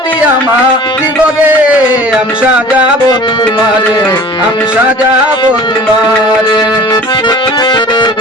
আমার জীবনে, আমি সাজাবো তোমারে, আমি সাজাবো তোমারে।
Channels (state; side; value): normal; both; correlation 0.44